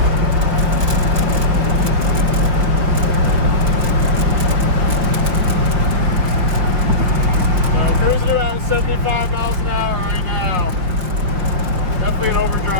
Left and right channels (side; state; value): left; late; 5.6 ms